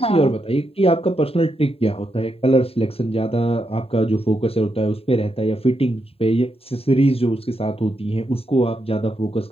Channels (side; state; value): right; late; 0.28 ms